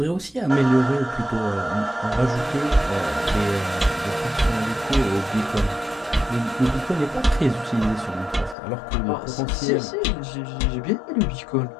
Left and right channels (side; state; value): right; drops out; at 8.6 s